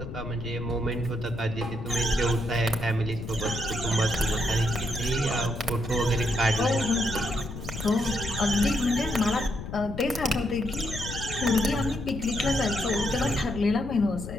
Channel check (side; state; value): left; noise; rumble, 9 dB below the sound